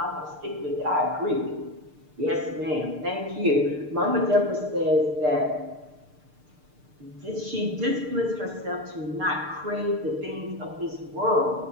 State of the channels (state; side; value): late; left; 6.7 ms